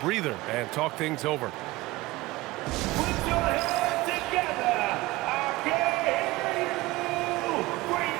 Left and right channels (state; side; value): quieter; left; 19.8 dB